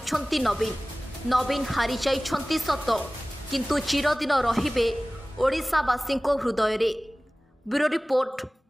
नवीन हारी जाइछंती सत किंतु चिरदिन रहिबे ओडिशावासी हृदय रे। Bureau report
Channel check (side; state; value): both; normal; correlation 0.98